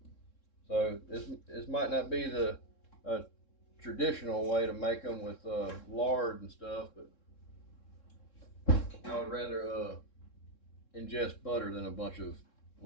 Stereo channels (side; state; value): right; late; 3.7 ms